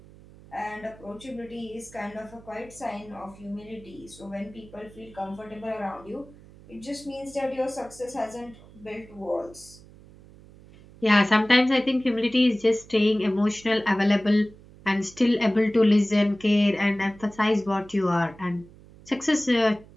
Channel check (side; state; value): right; noise; hum, 22 dB below the sound